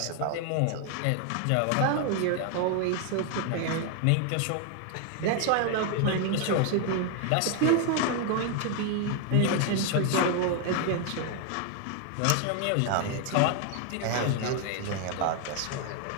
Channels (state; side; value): different; both; correlation 0.00